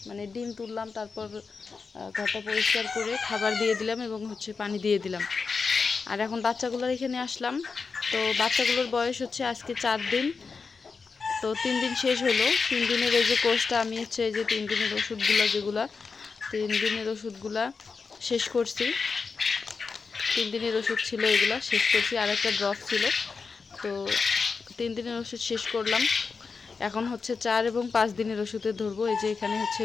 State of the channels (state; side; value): quieter; right; 4.9 dB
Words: মানে ডিম তুললাম, তারপর ঘরটা পরিষ্কার করে খাবার দিয়ে দিলাম এবং পানি দিয়ে দিলাম। আর এখন বাচ্চাগুলোর এখানে আসলাম। তো বাচ্চাগুলোর বয়স আজকে 4 দিন। তো 3 দিন শেষ হলো। 3 দিনের এই যে কোর্সটা আমি এই যে 3 দিনের ওষুধগুলো, যেগুলা 3 দিনের ওষুধগুলা শেষ করছি। 3 দিনের ওষুধ ছিল, এগুলা শেষ করছি, আর একটা ড্রপ ছিল। তো 3 দিনের ওষুধ শেষ করলাম। এখন 4 এবং 5 দিনের ওষুধে ধরবো। এই যে এখানে